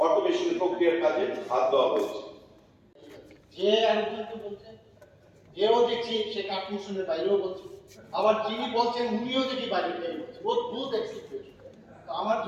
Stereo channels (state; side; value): identical; both; correlation 1.00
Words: অটোমেশন প্রক্রিয়ার কাজে হাত দেওয়া হয়েছে। যে আরেকজনকে বলছে, এও দেখছি সে কাঠমোশনের বাইরেও বলছে, আবার যিনি বলছেন উনিও দেখি বাইরে থেকে বলছে, অদ্ভুত এক্সিকিউশন। তো আমার